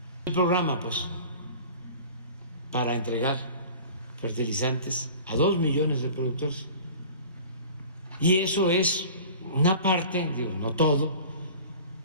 el programa, pues, para entregar fertilizantes a 2 millones de productores. Y eso es una parte, digo, no todo,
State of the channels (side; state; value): both; inverted; correlation -0.41